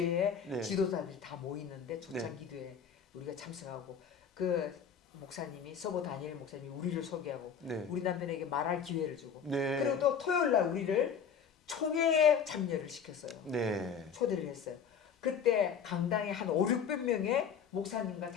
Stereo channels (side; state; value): right; quieter; 7.0 dB